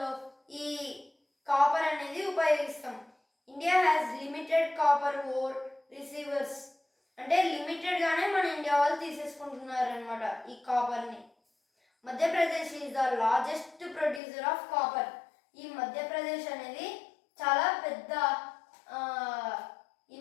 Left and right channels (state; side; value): drops out; right; at 14.2 s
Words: ఈ కాపర్ అనేది ఉపయోగిస్తాం. India has limited copper ore receivers. అంటే లిమిటెడ్గానే మన ఇండియా వాళ్ళు తీసేసుకుంటున్నారు అనమాట ఈ కాపర్ని. Madhya Pradesh is the largest producer of copper. ఈ మధ్యప్రదేశ్ అనేది చాలా పెద్ద